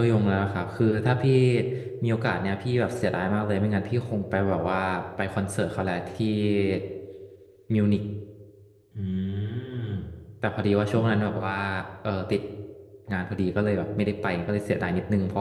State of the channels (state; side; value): identical; both; correlation 1.00